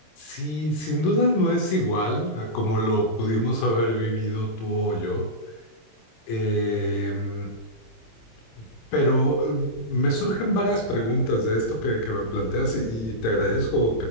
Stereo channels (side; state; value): right; late; 26 ms